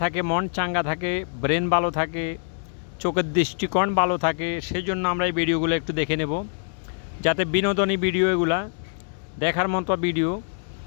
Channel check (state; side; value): silent; right; digital silence